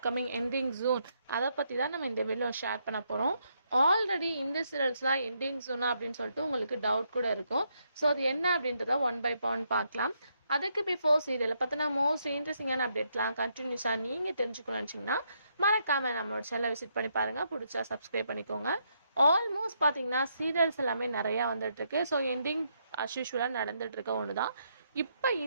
எண்டிங் ஜூன் அதை பற்றி தான் நம்ம இந்த வீடியோ ஷேர் பண்ண போகிறோம். ஆல்ரெடி இந்த சீரியல்ஸ்லாம் எண்டிங் ஜூனா அப்படின்னு சொல்லிட்டு உங்களுக்கு டவுட் கூட இருக்கும். ஸோ அது என்ன அப்படின்றத ஒன் பை ஒன் பார்க்கலாம். அதுக்கு பிஃபோர் சீரியலை பார்த்தினா மோஸ்ட் இன்ட்ரெஸ்டிங்கான அப்டேட்லாம் கண்டினியூஸாக நீங்கள் தெரிஞ்சுக்கணும்னு நினச்சிங்கன்னா மறக்காமல் நம்மளோட சேனலை விசிட் பண்ணி பாருங்கள். பிடிச்சா சப்ஸ்கிரைப் பண்ணிக்கோங்க. ஆல்மோஸ்ட் பார்த்தீங்கன்னா சீரியல்ஸ் எல்லாமே நிறையா வந்துட்டுருக்கு. ஸோ எண்டிங் அஸ்யூஷுவலாக நடந்துகிட்ருக்க ஒன்று தான். இப்போ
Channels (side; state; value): both; inverted; correlation -0.77